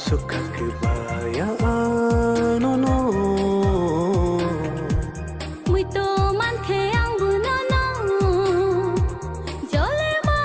kebayaan nono mwito man ke ang bunono jole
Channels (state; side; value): identical; both; correlation 1.00